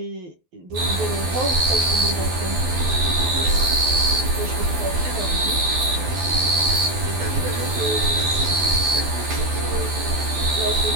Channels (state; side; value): late; left; 12 ms